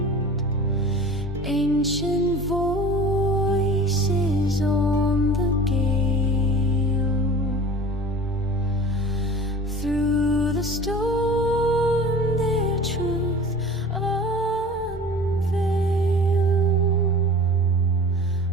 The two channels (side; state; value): both; normal; correlation 0.40